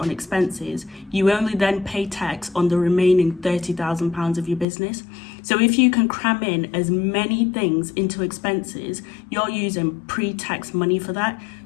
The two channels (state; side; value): drops out; right; at 4.7 s